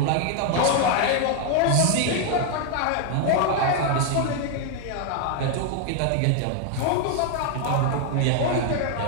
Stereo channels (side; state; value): both; different; correlation 0.00